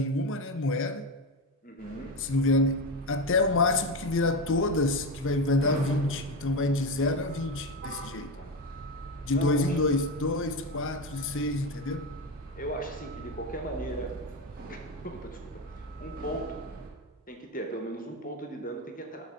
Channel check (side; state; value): both; normal; correlation 0.16